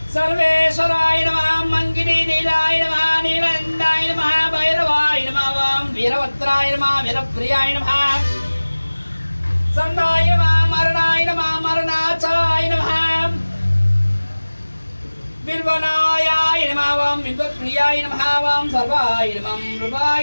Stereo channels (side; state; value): both; inverted; correlation -1.00